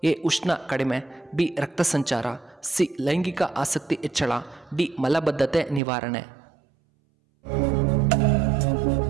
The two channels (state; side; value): drops out; left; at 5.8 s